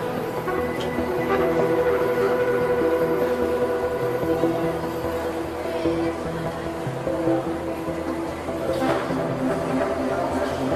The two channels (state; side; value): identical; both; correlation 1.00